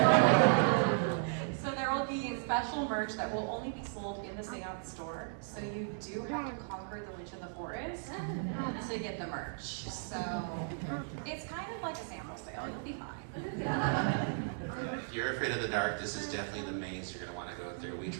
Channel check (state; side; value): silent; left; 54 dB below the other